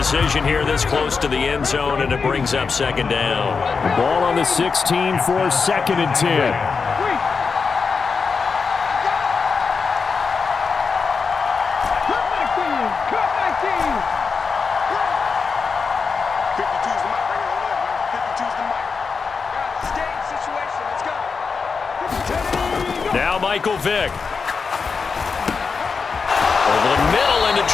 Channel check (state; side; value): quieter; right; 5.1 dB